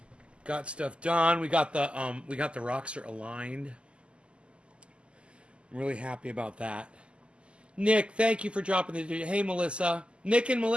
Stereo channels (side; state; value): left; late; 0.053 ms